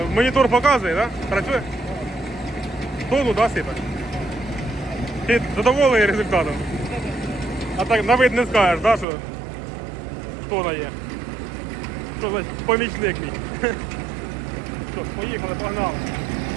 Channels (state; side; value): drops out; left; at 9.1 s